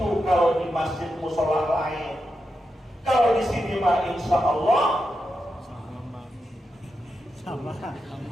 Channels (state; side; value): normal; both; correlation 0.87